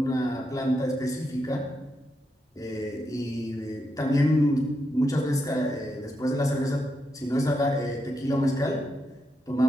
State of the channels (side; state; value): both; normal; correlation 0.83